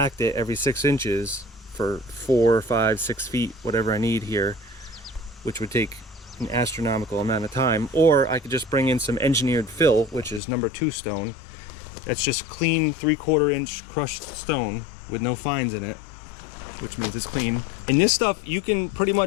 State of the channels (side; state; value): right; drops out; at 10.4 s